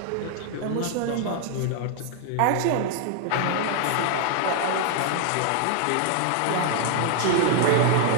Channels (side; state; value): both; different; correlation 0.00